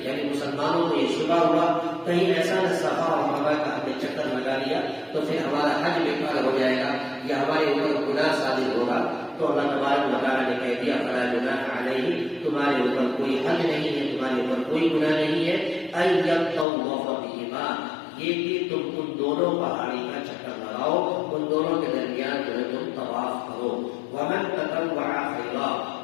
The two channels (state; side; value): drops out; right; at 16.7 s